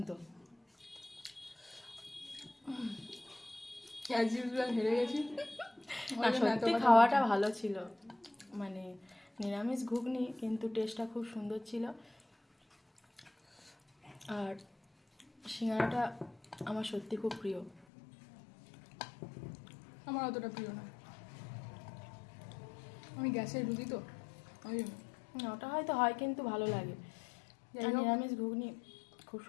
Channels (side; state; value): right; drops out; at 17.9 s